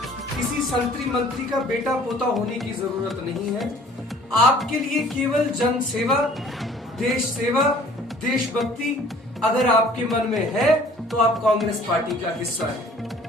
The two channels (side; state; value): both; normal; correlation 0.53